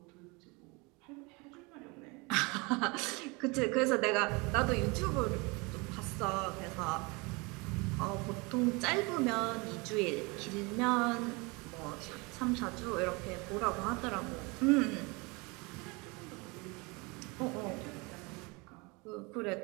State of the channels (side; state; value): left; quieter; 27.5 dB